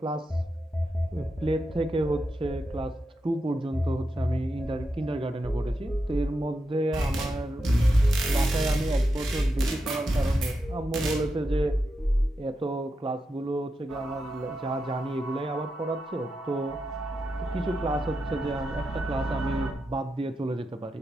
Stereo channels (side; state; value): both; normal; correlation 0.87